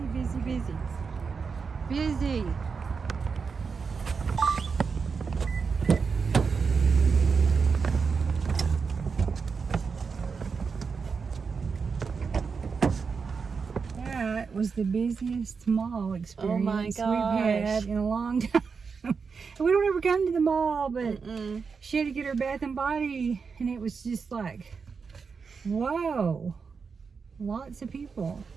busy, busy. Busy. That was the busiest mall experience we've had in a long time. We don't ever come to the mall, but she had to get her bath and body, and it was just like, whoa, lots of people.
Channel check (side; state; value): left; quieter; 5.4 dB